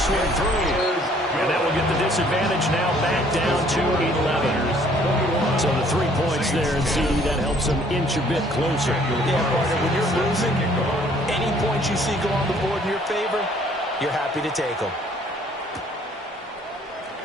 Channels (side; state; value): both; normal; correlation 0.60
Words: one through. And that will get the disadvantage now back down to 11. So the 3 points there, and CD, that helps them inch a bit closer. Yeah, partner, when you're losing, any points you see go on the board in your favor, you're happy to take them.